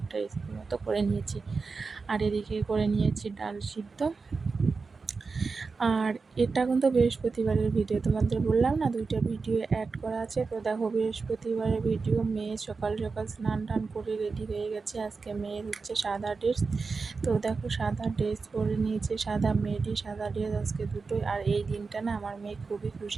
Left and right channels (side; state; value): left; quieter; 4.5 dB